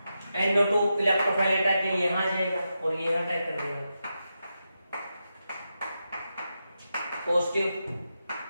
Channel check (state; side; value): inverted; both; correlation -0.88